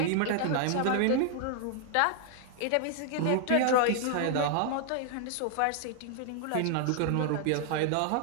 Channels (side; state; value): both; different; correlation 0.00